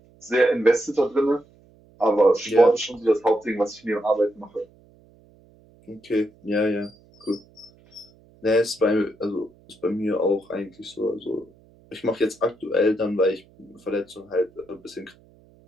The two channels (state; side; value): noise; right; hum, 29 dB below the sound